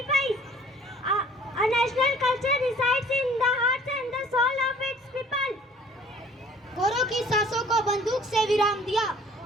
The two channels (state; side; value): normal; both; correlation 0.52